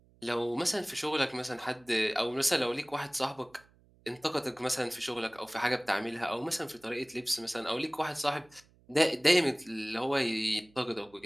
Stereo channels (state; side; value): noise; right; hum, 30 dB below the sound